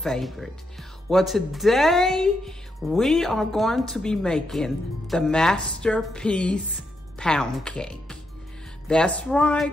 Well, today we are going to be making the masterpiece pound cake. That's right.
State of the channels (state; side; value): normal; both; correlation 0.81